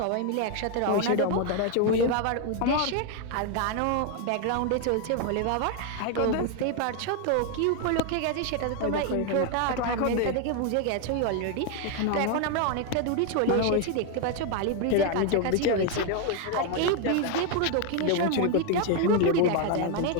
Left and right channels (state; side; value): different; both; correlation 0.01